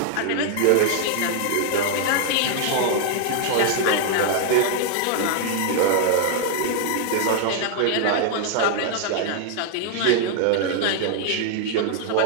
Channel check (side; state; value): both; different; correlation 0.00